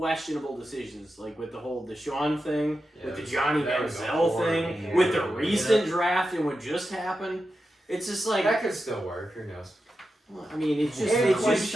decisions, like with the whole Deshaun thing, with the Johnny that was a Manziel thing, horrible with the move. recent draft and what just happened. It's just like, That could still work. Who knows? well, I mean, it's just, And it's Quinshon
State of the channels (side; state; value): both; normal; correlation 0.90